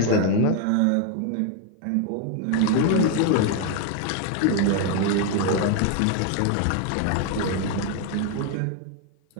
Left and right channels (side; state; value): both; different; correlation 0.01